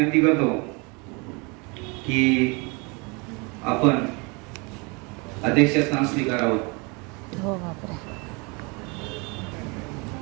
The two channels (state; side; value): quieter; left; 29.4 dB